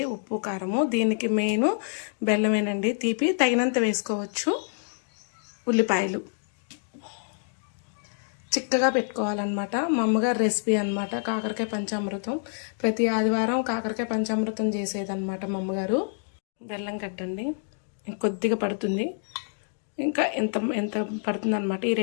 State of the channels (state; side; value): silent; right; digital silence